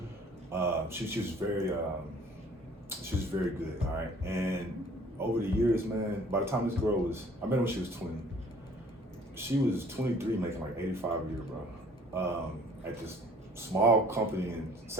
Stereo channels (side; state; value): both; normal; correlation 0.54